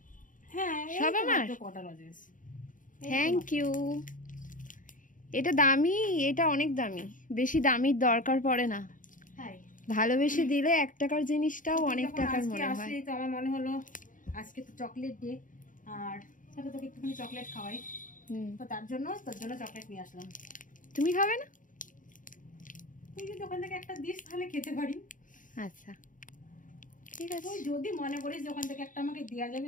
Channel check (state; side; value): late; right; 0.38 ms